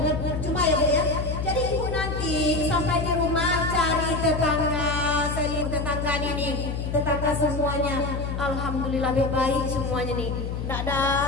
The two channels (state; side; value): noise; left; hum, 3 dB below the sound